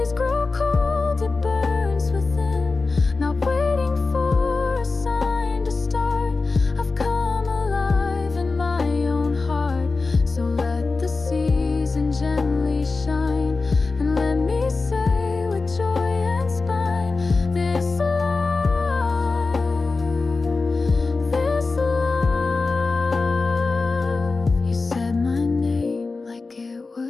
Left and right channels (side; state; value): right; quieter; 3.9 dB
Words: grow cold, it burns within. Not waiting for a sign to start. I've come alive in my own heart. So let the season gently shine, and let me say with joy and spine, this love, this love. You said my name like it